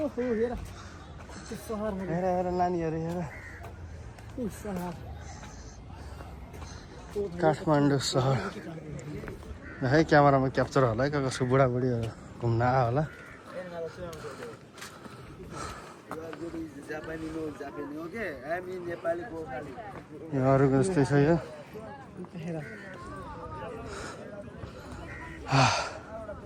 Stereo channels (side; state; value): both; identical; correlation 1.00